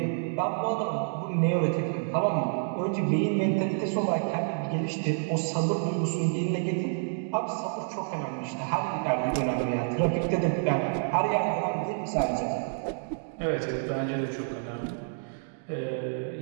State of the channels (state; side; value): silent; left; digital silence